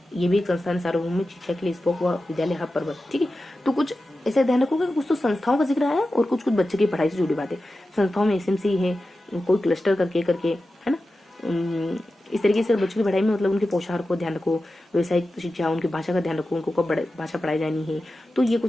ये भी एक संस्थान, सार्वभौमिक शिक्षा के लिए स्पोक व विद्यालय हब पर बल। ठीक है, तो कुछ ऐसे ध्यान रखोगे कुछ तो संस्थाओं का जिक्र आया और कुछ कुछ बच्चे की पढ़ाई से जुड़ी बातें। संस्थाओं में एसएमसी है, कोई क्लस्टर करके है ना। इस तरीके से बच्चों की पढ़ाई में मतलब उनके पोशाक को ध्यान रखो, व्यवसायिक शिक्षा, उनकी भाषा का ध्यान रखो, उनको कब भाषा पढ़ाई जानी है, तो ये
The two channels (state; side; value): normal; both; correlation 0.93